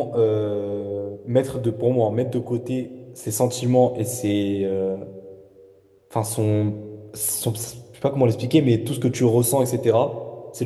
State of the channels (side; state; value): both; identical; correlation 1.00